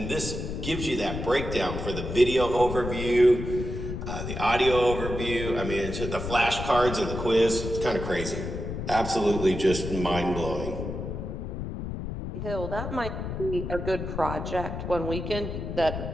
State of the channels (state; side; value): noise; left; rumble, 6 dB below the sound